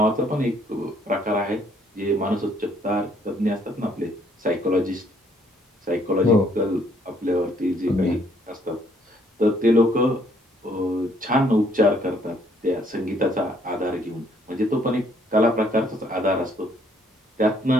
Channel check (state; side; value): normal; both; correlation 0.66